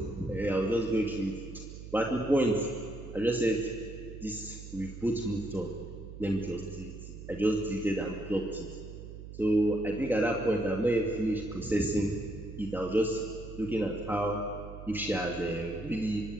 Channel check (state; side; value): noise; right; hum, 12 dB below the sound